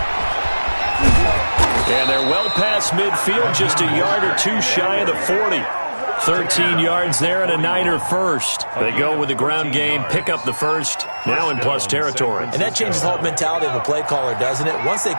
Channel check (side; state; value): both; inverted; correlation -1.00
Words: And they're well past midfield, just a yard or two shy of the 40. 13 yards there and a Niner first. They go with the ground game, pick up the first, now in plus territory. And that changes the whole mentality of a play caller, doesn't it? Once they